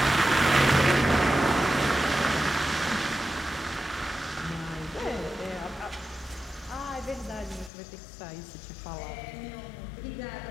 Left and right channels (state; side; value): drops out; right; at 7.7 s